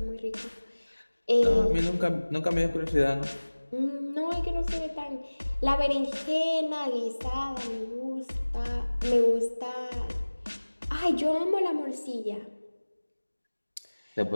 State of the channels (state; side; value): inverted; both; correlation -1.00